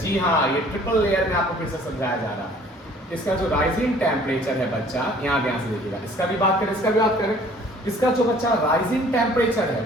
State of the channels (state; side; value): normal; both; correlation 0.54